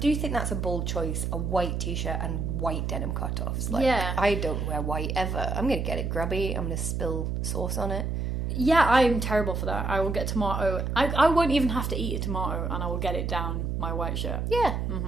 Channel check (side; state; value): right; noise; hum, 1 dB below the sound